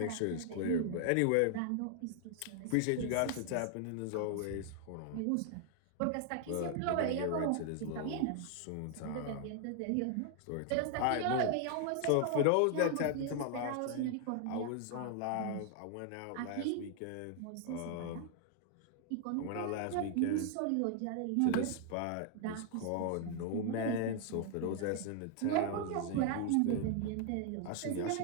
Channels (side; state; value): both; different; correlation 0.00